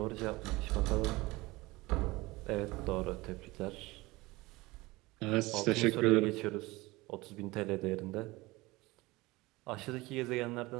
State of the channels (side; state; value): left; quieter; 21.2 dB